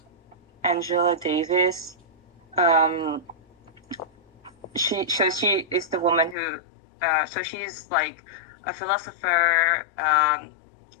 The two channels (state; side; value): drops out; right; at 6.4 s